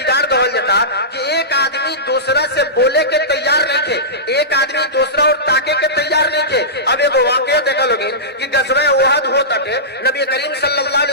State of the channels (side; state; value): both; normal; correlation -0.17